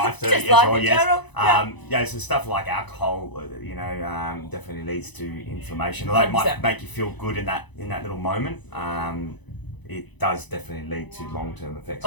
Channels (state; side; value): late; right; 1.0 ms